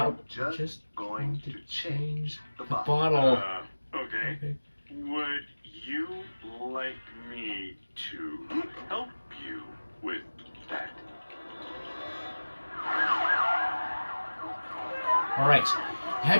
Out. just going to change the the bottle. bottle. Okay. Would you like me to help you with that? Alright. You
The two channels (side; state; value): both; inverted; correlation -1.00